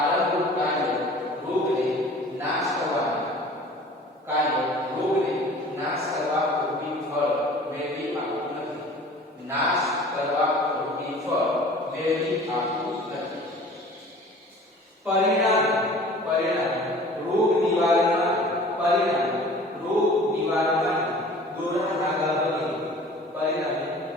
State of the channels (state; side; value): normal; both; correlation 0.46